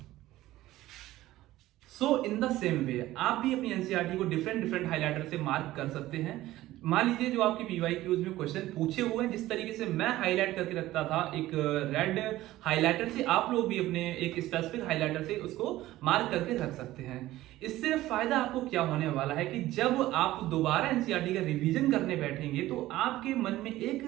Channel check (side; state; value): left; quieter; 15.9 dB